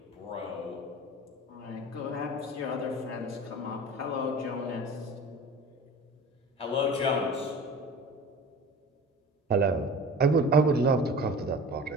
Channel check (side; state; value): both; normal; correlation 0.39